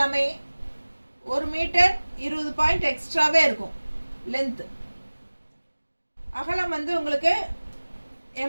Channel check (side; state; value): both; inverted; correlation -1.00